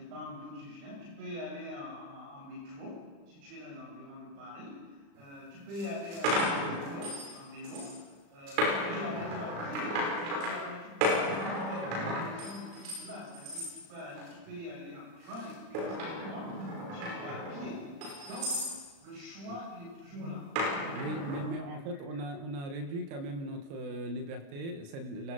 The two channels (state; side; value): late; left; 36 ms